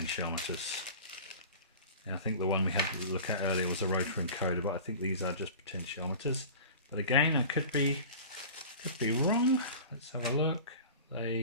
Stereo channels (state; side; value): inverted; both; correlation -0.38